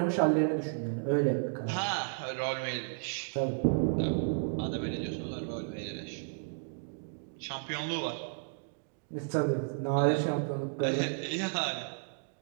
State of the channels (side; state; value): left; silent; digital silence